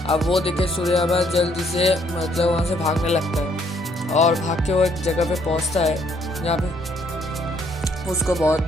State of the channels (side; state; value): both; normal; correlation 0.67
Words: अब वो देखे सूर्यामा जल्दी से मतलब वहाँ से भागने लगता है और भाग के वो एक जगह पे पहुँचता है जहाँ पे उसको